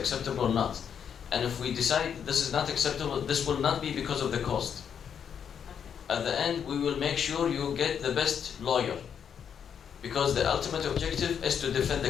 or not. And if we decide this is not acceptable, this will not be because of the cost. At the end, we will make sure you get the best lawyer. Because the ultimate objective is to defend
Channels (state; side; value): quieter; right; 7.8 dB